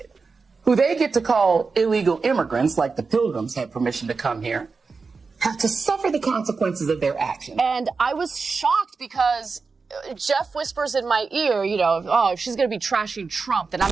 who they get to call illegal immigrants, like the Pilgrims had permission to come here, have to suffer the consequences of their actions. And I was shocked because Jeff whispers in my ear, oh, if she's going to be trashing Trump, then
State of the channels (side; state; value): left; quieter; 4.6 dB